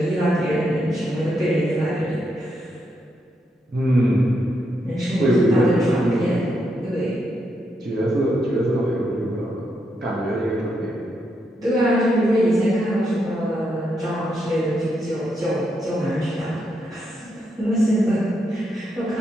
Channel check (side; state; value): both; normal; correlation 0.81